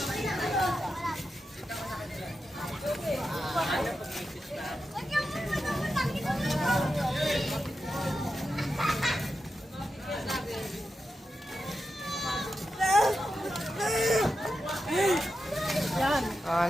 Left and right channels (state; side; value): normal; both; correlation 0.89